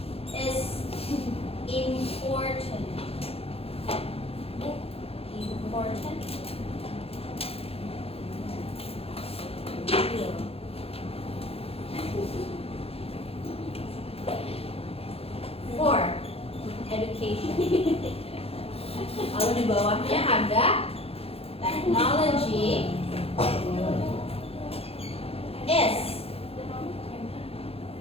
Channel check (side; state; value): right; late; 0.28 ms